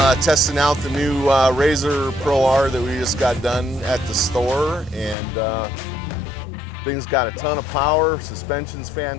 testing out the new RZR Pro R that we just got done at the store, and thing's got a ton of power, suspension's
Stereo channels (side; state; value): right; drops out; at 5.2 s